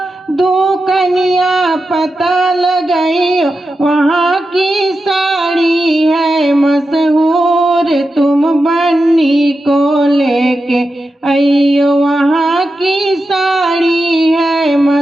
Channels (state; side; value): normal; both; correlation 0.90